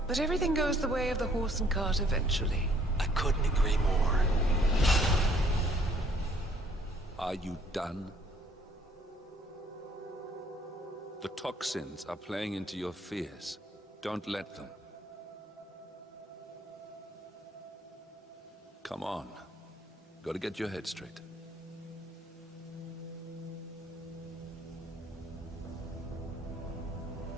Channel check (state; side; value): normal; both; correlation 0.62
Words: But everything goes the way of the horse and cart eventually. I couldn't agree more. Are you done? The toxins are playing into your fears. Don't let them. Come on. Gotta get your head straight.